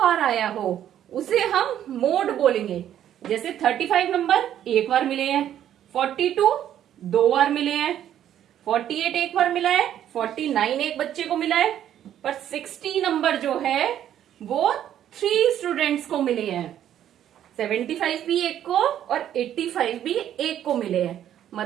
आया हो उसे हम मोड बोलेंगे। जैसे 35 नंबर एक बार मिले हैं, 42 2 बार मिले हैं, 48 एक बार मिला है, 49 एक बच्चे को मिला है, पर 60 नंबर जो है वो 3 स्टूडेंट्स को मिले हैं। 75 भी एक को और 85 भी एक को मिले हैं।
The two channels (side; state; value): left; quieter; 10.8 dB